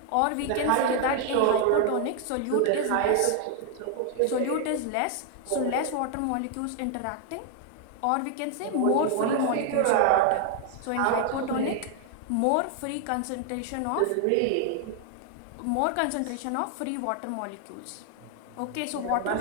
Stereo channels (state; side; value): different; both; correlation 0.00